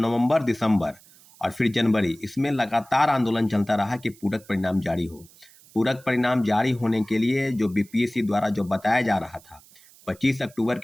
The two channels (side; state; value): right; noise; hiss, 25 dB below the sound